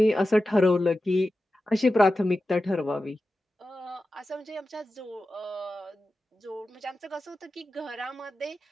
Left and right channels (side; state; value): both; normal; correlation 0.93